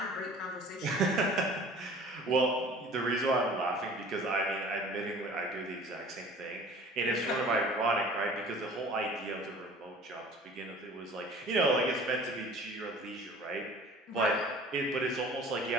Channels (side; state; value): both; normal; correlation 0.46